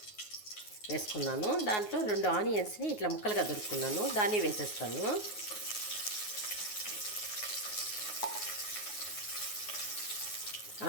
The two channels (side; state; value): right; late; 9.5 ms